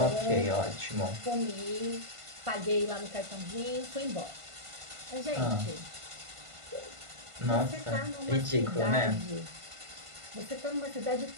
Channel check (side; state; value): left; late; 1.5 ms